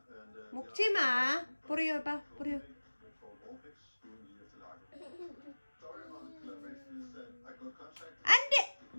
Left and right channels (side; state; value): both; inverted; correlation -1.00